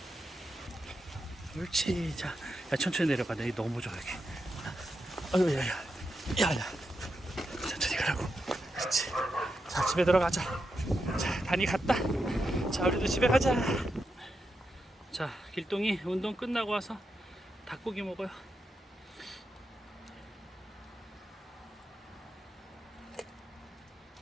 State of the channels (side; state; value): both; normal; correlation 0.86